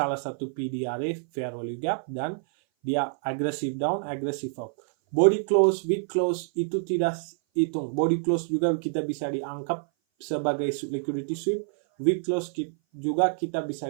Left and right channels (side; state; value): left; silent; 57 dB below the other